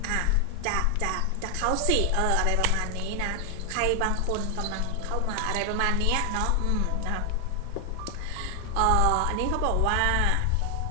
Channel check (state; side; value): different; both; correlation 0.00